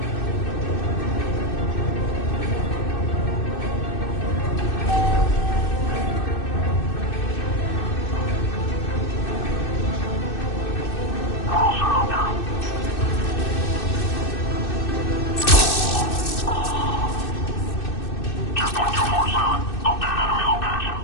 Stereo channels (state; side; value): late; right; 2.6 ms